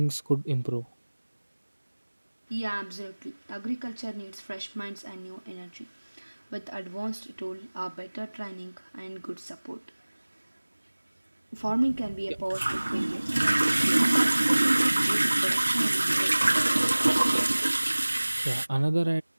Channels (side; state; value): both; inverted; correlation -1.00